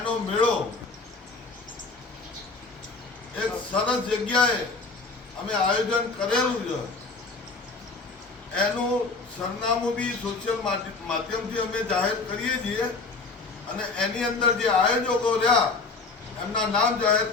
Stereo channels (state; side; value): quieter; right; 3.9 dB